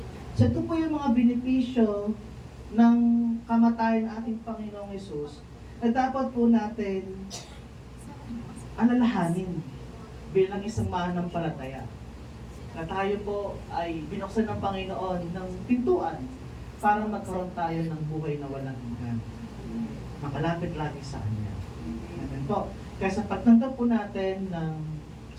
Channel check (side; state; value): both; identical; correlation 1.00